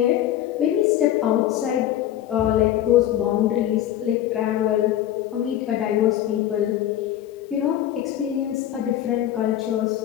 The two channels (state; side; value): quieter; right; 12.0 dB